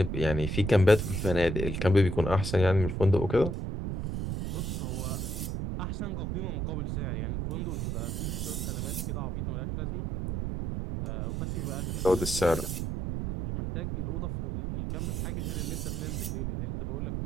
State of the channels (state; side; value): noise; right; rumble, 1 dB below the sound